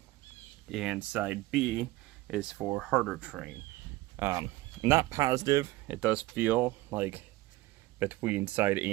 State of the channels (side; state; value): left; quieter; 18.5 dB